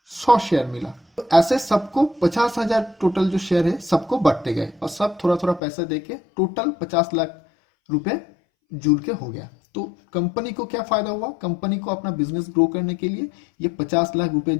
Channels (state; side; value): drops out; right; at 5.6 s